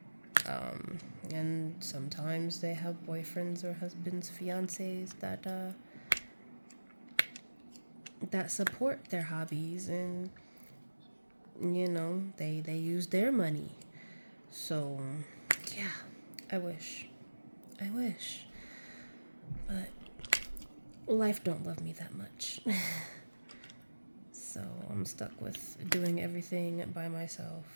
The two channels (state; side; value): inverted; both; correlation -1.00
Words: And sometimes they have boyfriends or husbands, fiancés that support their hobbies, and you know, they use their money. So yeah, I wish. But life don't love me that much. So I'm stuck with doing everything by myself.